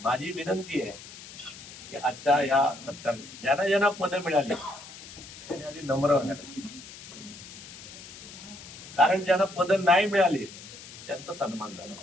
माझी विनंती आहे की आजच्या या सत्कार ज्यांना ज्यांना पद मिळाली त्यांनी आधी नम्र राहायला, कारण ज्यांना पद नाही मिळाले त्यांचा सन्मान झाला.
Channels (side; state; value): left; noise; hiss, 15 dB below the sound